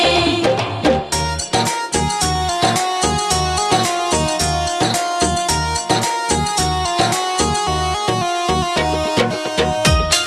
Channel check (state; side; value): identical; both; correlation 1.00